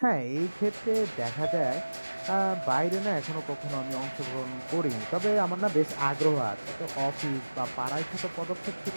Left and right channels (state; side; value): inverted; both; correlation -1.00